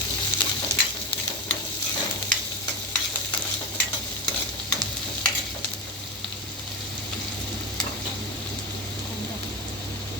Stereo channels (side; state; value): both; normal; correlation 0.19